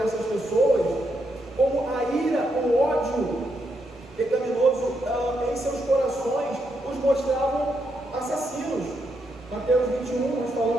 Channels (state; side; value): normal; both; correlation 0.80